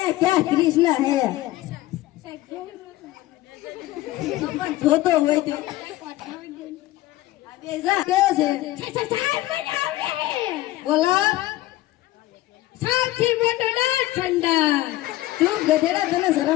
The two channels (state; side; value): quieter; right; 16.7 dB